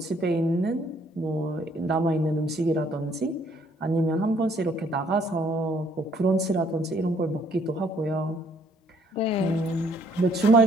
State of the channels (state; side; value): normal; both; correlation 0.65